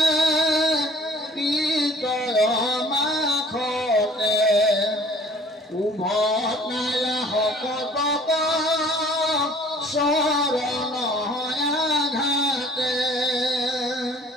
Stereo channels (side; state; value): both; normal; correlation 0.52